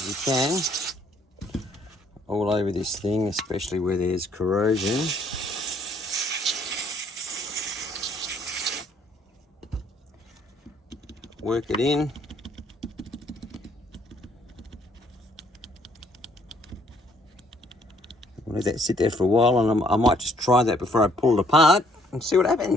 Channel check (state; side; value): normal; both; correlation 0.65